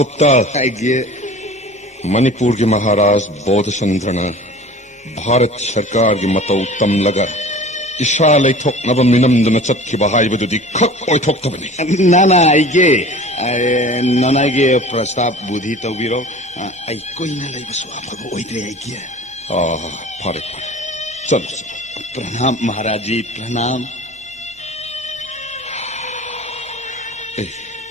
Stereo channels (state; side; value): normal; both; correlation 0.41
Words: आइगे मणिपुर के महाराज बोधचंद्रन भारत सरकार की मतौ तम लगा इशा लेथोकनब मिनमदन चतखिबा हाइबदुदि खक ओइथोक्तबनि नाना आइगे नानागे प्रस्ताव बुद्धि तौबिरो आई कोइना लेबसु आफब ओइद्रे आइगे फारे चलो प्रणाम महाराज जी प्रणाम